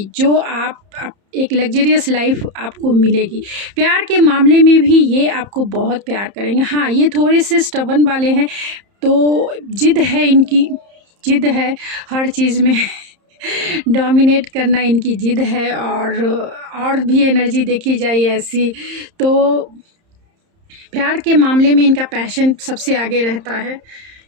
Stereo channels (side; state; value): left; late; 30 ms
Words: जो आप एक लग्जरियस लाइफ आपको मिलेगी। प्यार के मामले में भी ये आपको बहुत प्यार करेंगे। हाँ, ये थोड़े से स्टबर्न वाले हैं, तो जिद है इनकी, जिद है हर चीज़ में डोमिनेट करना इनकी जिद है, और भी एनर्जी देखी जाए ऐसी तो प्यार के मामले में इनका पैशन सबसे आगे रहता है।